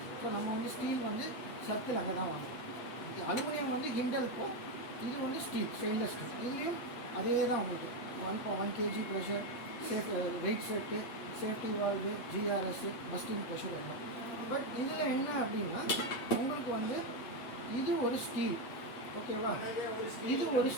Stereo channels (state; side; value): late; right; 7.8 ms